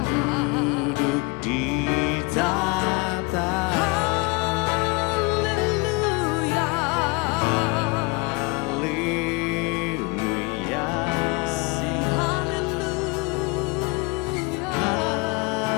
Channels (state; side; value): quieter; right; 27.9 dB